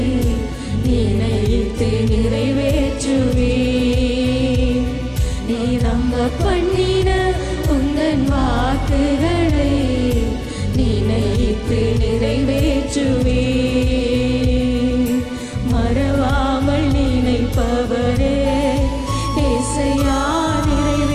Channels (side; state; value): both; identical; correlation 1.00